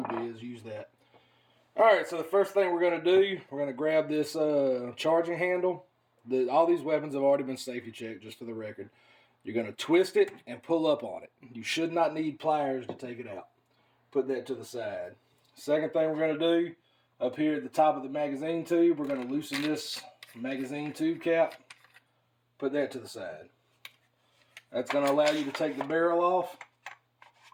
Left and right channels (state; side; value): identical; both; correlation 1.00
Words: is, use that. All right, so the first thing we're going to do, we're going to grab this charging handle. All these weapons have already been safety checked, just for the record. You're going to twist it and pull up on it. You should not need pliers to take it out. Put that to the side. Second thing we're going to do, up here at the top of the magazine tube, we're going to loosen this magazine tube cap. Put that to the side. That's going to allow you to take the barrel off.